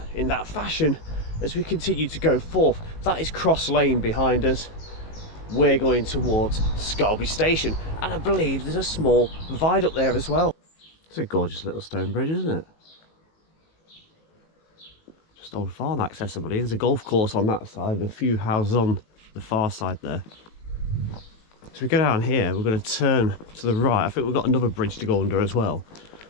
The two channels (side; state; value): right; late; 19 ms